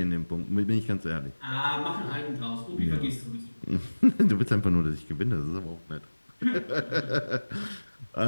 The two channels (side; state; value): both; inverted; correlation -1.00